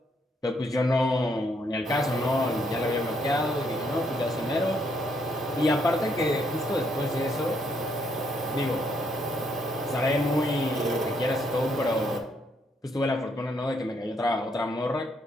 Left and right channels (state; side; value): normal; both; correlation 0.73